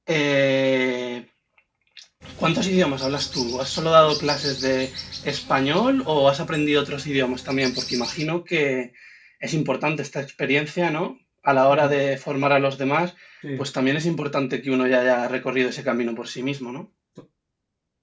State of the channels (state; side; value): identical; both; correlation 1.00